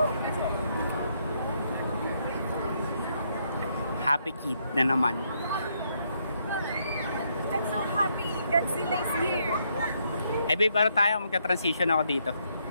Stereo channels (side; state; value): both; inverted; correlation -0.74